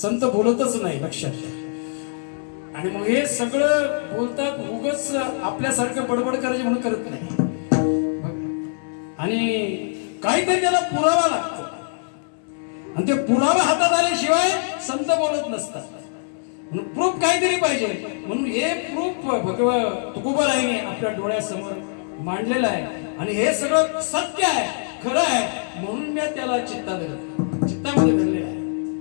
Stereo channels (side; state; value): right; silent; digital silence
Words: संत बोलतच नाही, लक्षात घ्या. आणि मग हे सगळं बोलतात उगच आपल्यासारखं बडबड करायचे म्हणून करत नाही. आणि काहीतरी त्याला पुरावा लागतो. आणि ते पुरावा हातात आल्याशिवाय संत बोलत नसतात. म्हणून प्रूफ काहीतरी पाहिजे. म्हणून हे प्रूफ तुकोबारायांनी आपल्या डोळ्यासमोर मांडलेलं आहे. आणि हे सगळं सत्य आहे, खरं आहे. म्हणून मी त्याला चित्तामध्ये धरलेलं आहे.